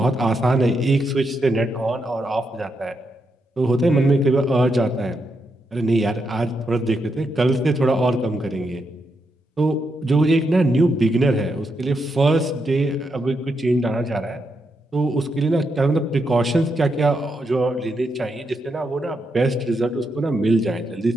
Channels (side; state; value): both; normal; correlation 0.82